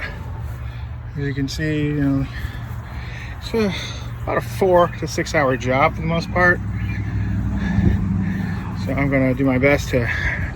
As you can see, it's about a 4 to 6 hour job for the most part. So I'm going to do my best to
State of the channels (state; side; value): identical; both; correlation 1.00